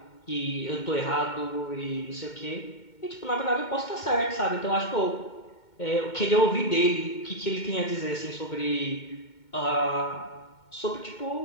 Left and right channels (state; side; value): late; right; 2.2 ms